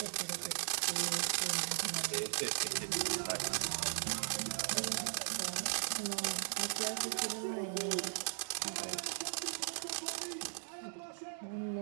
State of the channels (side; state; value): left; silent; digital silence